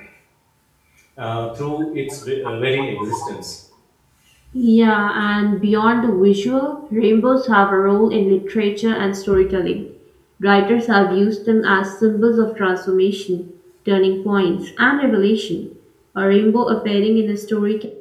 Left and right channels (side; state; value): both; identical; correlation 1.00